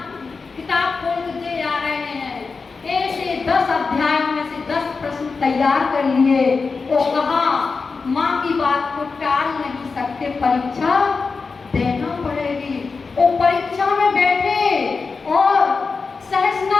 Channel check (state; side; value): quieter; right; 4.6 dB